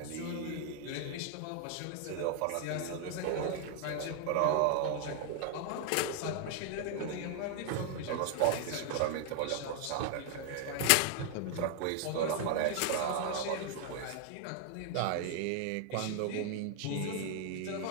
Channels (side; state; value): both; different; correlation 0.00